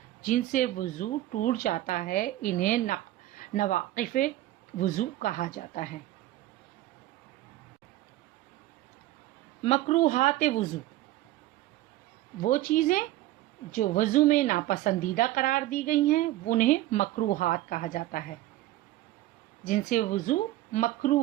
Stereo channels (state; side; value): quieter; left; 15.6 dB